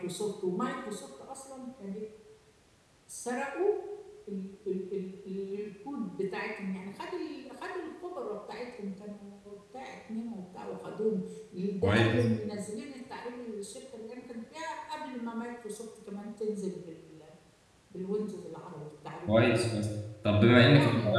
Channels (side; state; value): both; identical; correlation 1.00